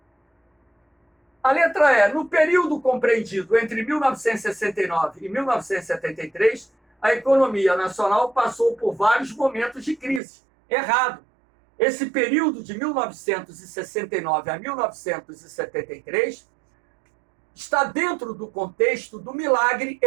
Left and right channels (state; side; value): drops out; left; at 10.2 s